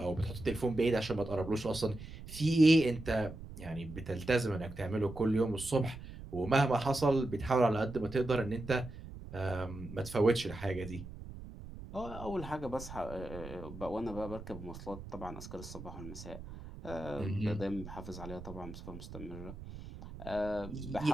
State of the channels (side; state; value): right; noise; rumble, 12 dB below the sound